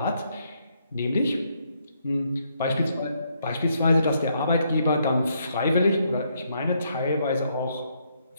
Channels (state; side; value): inverted; both; correlation -0.74